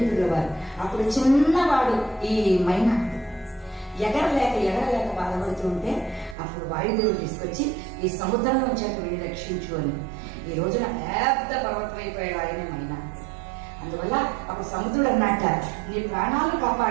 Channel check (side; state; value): left; drops out; at 6.4 s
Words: వారు. అప్పుడు చిన్నవాడు ఈ మైనాకుడు ఎగరలేక బాధపడుతూ ఉంటే అప్పుడు వాయుదేవుడు తీసుకొచ్చి ఈ సముద్రంలో వచ్చాక వెళ్ళి రక్షించు అని. ఈ రోజున పెద్ద పర్వతం అయిపోయాడు ఆయనే మైనాకుడు. అందువల్ల అప్పుడు సముద్రుడు అన్నట్ట, నీ ప్రాణాలు